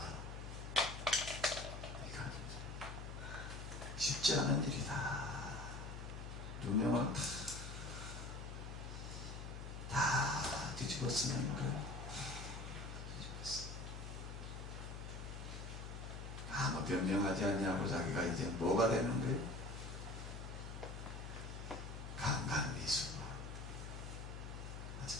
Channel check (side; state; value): left; noise; hum, 7 dB below the sound